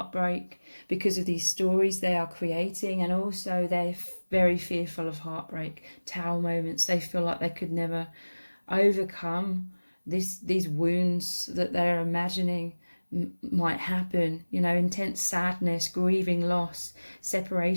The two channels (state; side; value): inverted; both; correlation -1.00